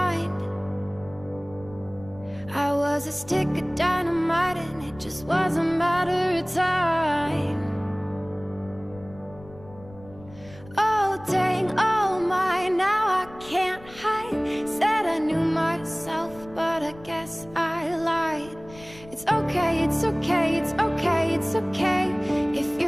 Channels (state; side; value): noise; left; rumble, 20 dB below the sound